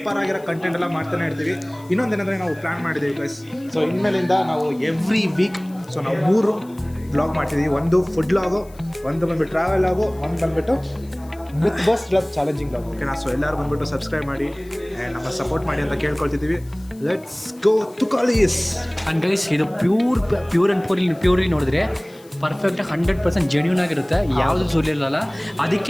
ಆಗಿರೋ ಕಂಟೆಂಟ್ ಎಲ್ಲ ಮಾಡ್ತಾನೆ ಇರ್ತೀವಿ. ಇನ್ನೊಂದೇನೆಂದರೆ ನಾವು ಪ್ಲ್ಯಾನ್ ಮಾಡಿದ್ದೀವಿ ಗೈಸ್. ಸೊ ಇನ್ಮೇಲಿಂದ ನಾವು ಎವ್ರಿ ವೀಕ್ ಸೊ ನಾವು 3 ಬ್ಲಾಗ್ ಮಾಡ್ತಿದ್ದೀವಿ. ಒಂದು ಫುಡ್ ಲಾಗು, ಒಂದು ಬಂದುಬಿಟ್ಟು ಟ್ರಾವೆಲ್ ಲಾಗು, ಒಂದು ಬಂದುಬಿಟ್ಟು ವಿತ್ ಬಸ್ ಚಾಲೆಂಜಿಂಗ್ ಲಾಗ್. ಓಕೆನಾ? ಸೊ ಎಲ್ಲರೂ ಬಂದುಬಿಟ್ಟು ಸಬ್ಸ್ಕ್ರೈಬ್ ಮಾಡಿ ಆ್ಯಂಡ್ ನಮ್ಮ ಸಪೋರ್ಟ್ ಮಾಡಿ ಅಂತ ಕೇಳ್ಕೊಳ್ತಿದ್ದೀವಿ. Let's go to college. And guys, ಇದು ಪ್ಯೂರ್ ಆ್ಯಂಡ್ ಪ್ಯೂರ್ಲಿ ನೋಡಿದ್ರೆ ಪರ್ಫೆಕ್ಟಾಗಿ 100% ಜೆನ್ಯೂನ್ ಆಗಿರುತ್ತೆ, ಯಾವುದು ಸುಲಿರಲ್ಲ.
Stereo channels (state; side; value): noise; left; hiss, 26 dB below the sound